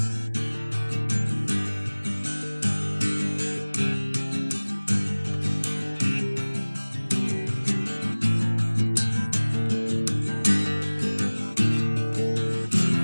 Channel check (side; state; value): both; inverted; correlation -1.00